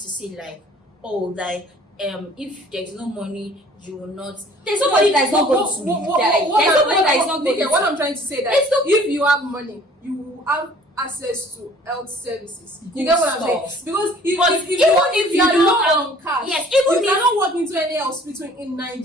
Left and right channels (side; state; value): both; normal; correlation 0.53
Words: say like, oh, like if there's no money, you will not. There's nobody that is not going to die. There's nobody that is not going to. What I'm trying to say that if you have money, you will have access to health services. You get what I'm saying? Because if you are low on cash, yes, you cannot walk into any hospital in